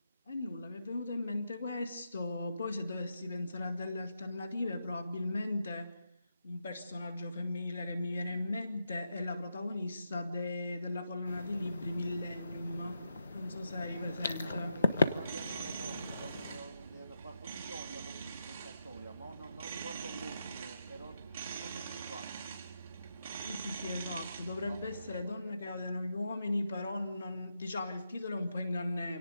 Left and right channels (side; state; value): both; inverted; correlation -0.83